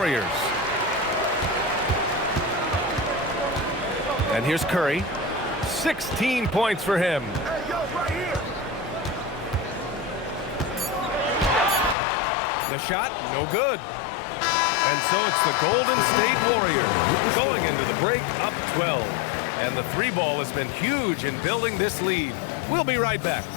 And here's Curry. 16 points for him. The shot, no good. And so it's the Golden State Warriors going into the break up 12. And the 3-ball has been huge in building this lead. We'll be right back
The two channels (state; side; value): drops out; right; at 12.0 s